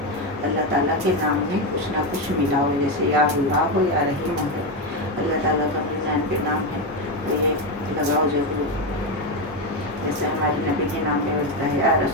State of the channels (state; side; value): normal; both; correlation 0.10